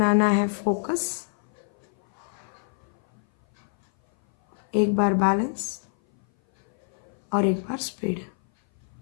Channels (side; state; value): right; silent; 57 dB below the other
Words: है फोकस, 1 बार बैलेंस और 1 बार स्पीड।